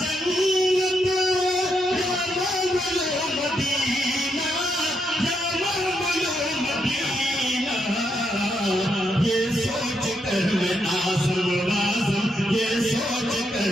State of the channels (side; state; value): both; normal; correlation 0.80